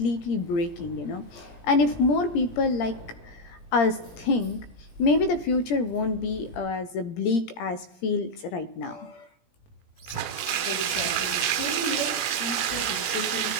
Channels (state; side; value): late; right; 17 ms